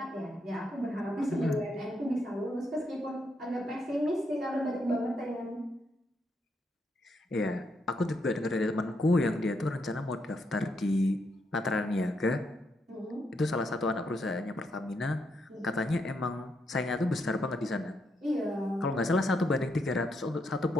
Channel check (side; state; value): both; normal; correlation 0.78